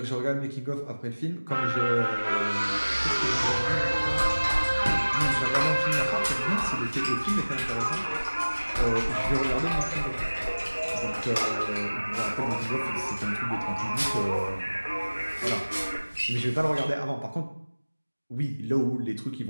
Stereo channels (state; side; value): inverted; both; correlation -1.00